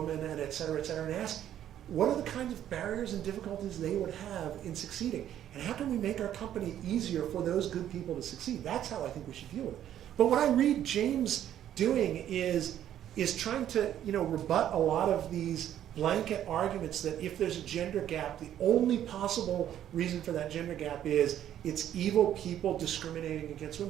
and et cetera, and ask, what are the kinds of barriers and difficulties they would have in succeeding? And how can we make our company easier for those good people to succeed? That's how I think we should deal with it. But what I read James doing is trying to rebut a lot of these blanket arguments that if there's a gender gap, the only possible reason for that gender gap is it's evil people discriminating against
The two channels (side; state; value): left; quieter; 11.0 dB